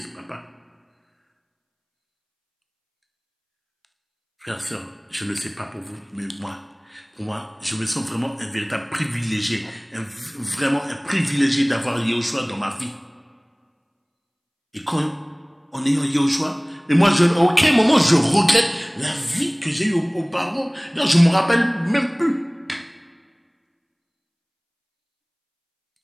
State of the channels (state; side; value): identical; both; correlation 1.00